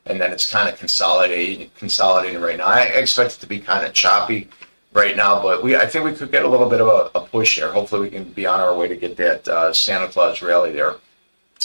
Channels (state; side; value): inverted; both; correlation -1.00